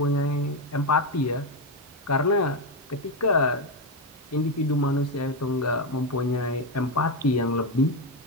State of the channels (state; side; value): normal; both; correlation 0.08